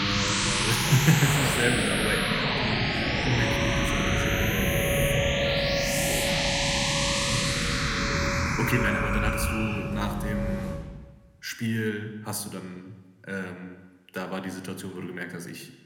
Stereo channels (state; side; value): identical; both; correlation 1.00